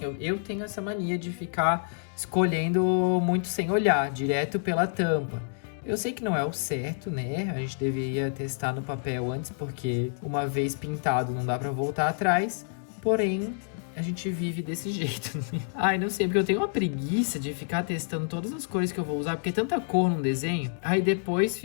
eu tenho essa mania de ficar escolhendo muito sem olhar, direto pela tampa. Eu sei que não é o certo, né? A gente deveria testar no papel antes, porque uma vez pintado não dá pra voltar atrás. Porém, a gente vive desse jeito, né? Ai, não sei, porque eu tenho uma preguiça de ficar testando todas as cores que eu vou usar, porque é tanta cor num desenho. Aí depois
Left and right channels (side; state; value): right; silent; digital silence